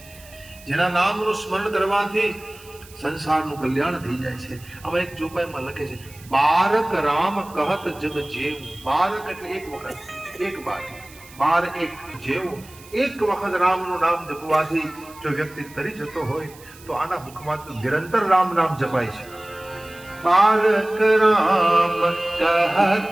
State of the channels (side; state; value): right; noise; hiss, 22 dB below the sound